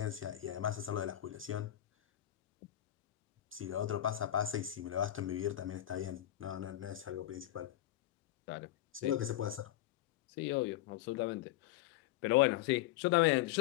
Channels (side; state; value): right; quieter; 13.8 dB